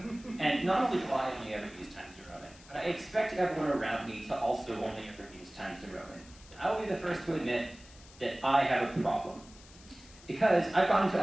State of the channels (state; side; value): noise; left; hiss, 22 dB below the sound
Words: And not only do I only ever use Times New Roman, but I expect everyone around me to also only ever use Times New Roman. And I will be the first to admit that I have a problem. Because I've gone into